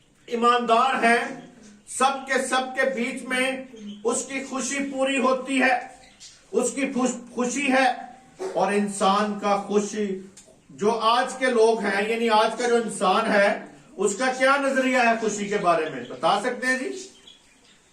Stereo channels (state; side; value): identical; both; correlation 1.00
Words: ईमानदार हैं, सबके बीच में उसकी खुशी पूरी होती है, उसकी खुशी है। और इंसान का खुशी जो आज के लोग हैं, यानी आज का जो इंसान है, उसका क्या नजरिया है खुशी के बारे में, बता सकते हैं जी?